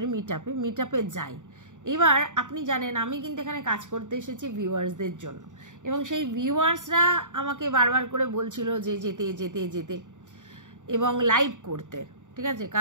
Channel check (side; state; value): left; late; 0.86 ms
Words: মিট আপে যাই। এবার আপনি জানেন আমি কিন্তু এখানে কাজ করতে এসেছি ভিউয়ার্সদের জন্য, এবং সেই ভিউয়ার্সরা আমাকে বারবার করে বলছিল যে যেতে যেতে যেতে এবং লাইভ করতে, ঠিক আছে?